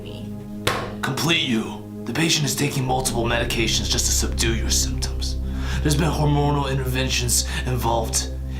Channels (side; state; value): both; identical; correlation 1.00